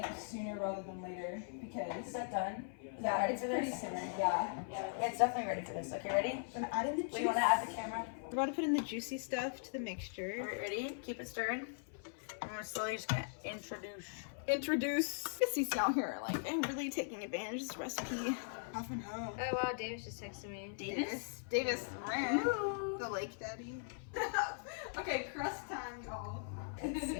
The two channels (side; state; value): right; silent; 51 dB below the other